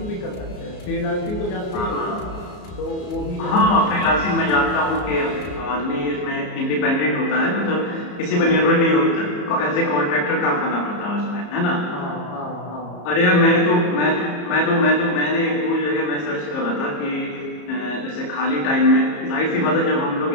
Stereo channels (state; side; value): late; right; 34 ms